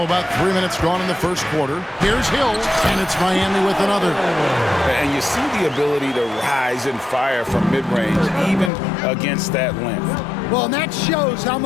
about 3 minutes gone in the first quarter. Here's Hill, and it's Miami with another. And you see the ability to rise and fire from mid-range, even against that length. Well, and that shows how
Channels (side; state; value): right; drops out; at 8.7 s